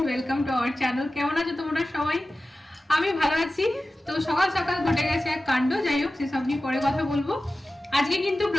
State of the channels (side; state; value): both; normal; correlation 0.95